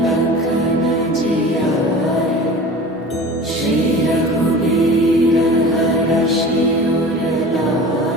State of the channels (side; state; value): both; normal; correlation 0.38